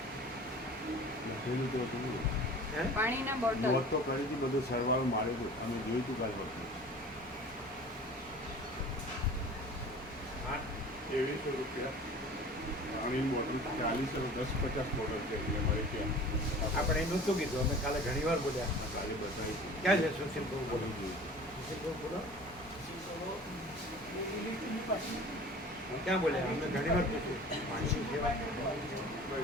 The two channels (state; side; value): normal; both; correlation 0.42